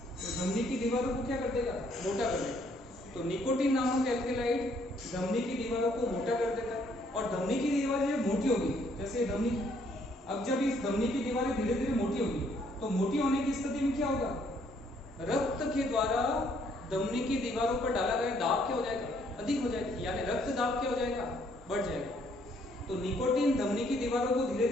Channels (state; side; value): normal; both; correlation 0.67